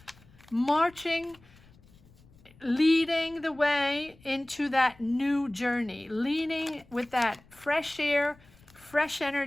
Marching, leading the way into that new journey. Leading with that fresh air, fresh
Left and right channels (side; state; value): left; noise; rumble, 27 dB below the sound